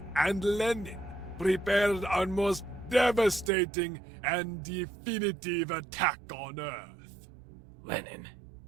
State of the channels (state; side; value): drops out; left; at 3.5 s